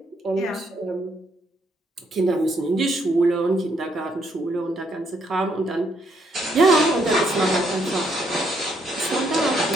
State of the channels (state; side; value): normal; both; correlation 0.72